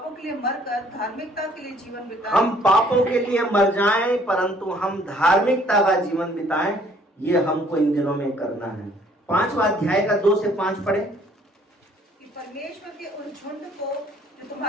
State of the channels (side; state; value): both; normal; correlation 0.60